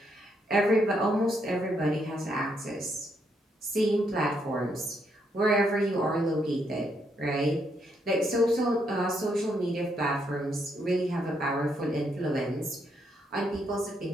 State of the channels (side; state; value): both; normal; correlation 0.76